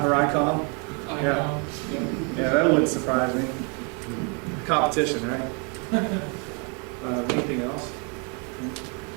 or ICOM. Yeah. Yeah, that wouldn't surprise me. Competition, right? Anything else?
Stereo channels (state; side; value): quieter; left; 35.7 dB